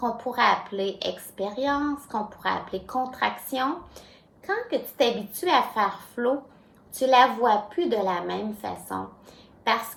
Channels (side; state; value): both; identical; correlation 1.00